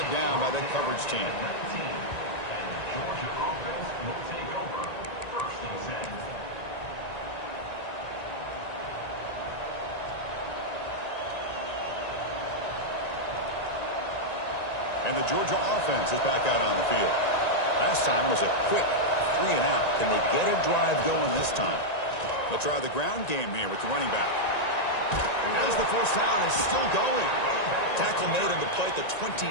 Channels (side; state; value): right; late; 1.9 ms